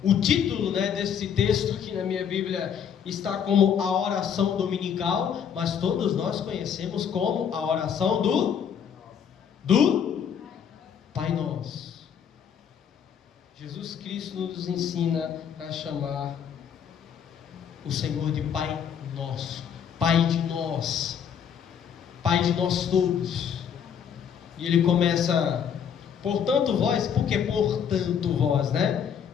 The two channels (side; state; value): right; quieter; 8.0 dB